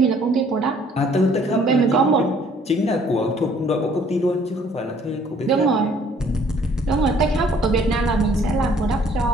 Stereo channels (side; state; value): both; normal; correlation 0.59